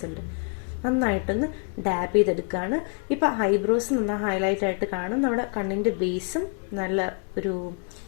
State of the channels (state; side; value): quieter; right; 39.0 dB